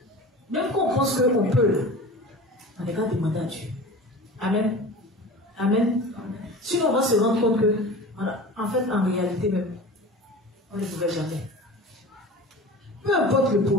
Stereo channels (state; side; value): normal; both; correlation 0.36